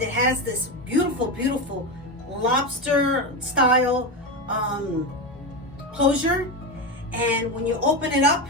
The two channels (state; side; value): normal; both; correlation 0.16